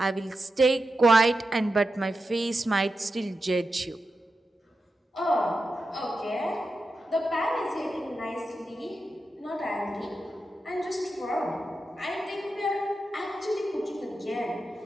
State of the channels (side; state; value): both; normal; correlation 0.90